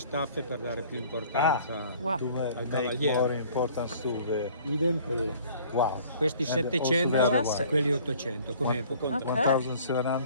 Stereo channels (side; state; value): both; inverted; correlation -0.53